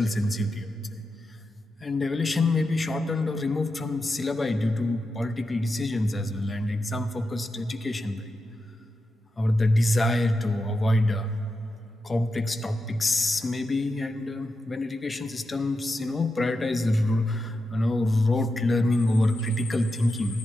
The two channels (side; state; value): both; normal; correlation 0.88